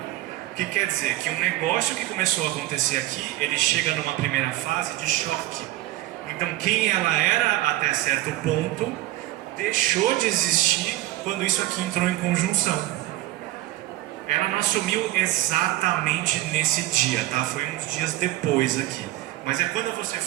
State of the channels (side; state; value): left; quieter; 16.3 dB